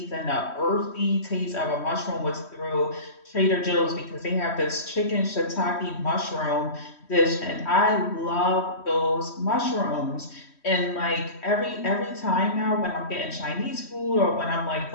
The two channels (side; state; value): right; late; 3.1 ms